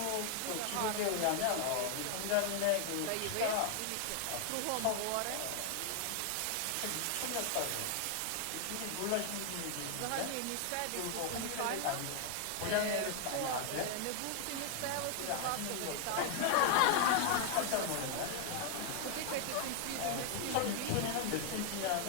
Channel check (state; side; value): different; both; correlation 0.00